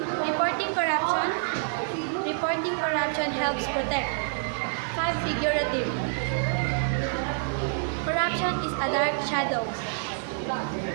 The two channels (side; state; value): left; silent; 60 dB below the other